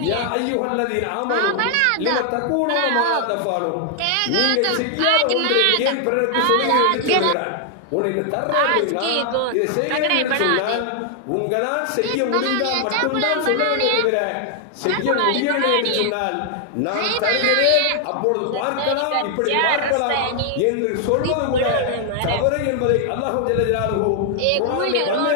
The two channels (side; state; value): both; different; correlation 0.00